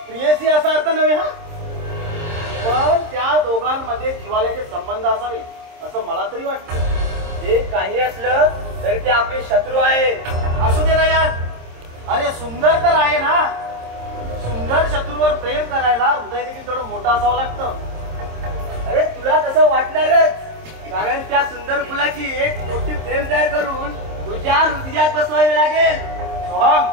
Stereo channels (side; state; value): left; late; 26 ms